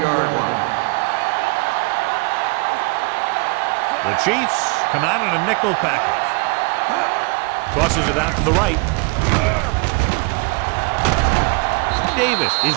line. Let's go. It's on. The Chiefs come out in a nickel package. Tosses it out to the right. Davis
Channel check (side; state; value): left; quieter; 29.3 dB